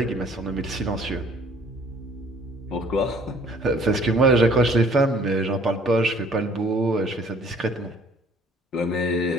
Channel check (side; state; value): both; normal; correlation 0.57